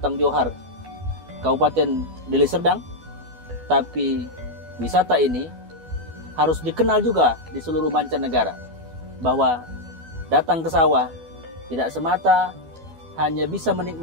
Johar, Kabupaten Deli Serdang, tapi wisata ini harus dikenal juga di seluruh mancanegara, bahwa datang ke sawah tidak semata hanya bisa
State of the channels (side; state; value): left; late; 12 ms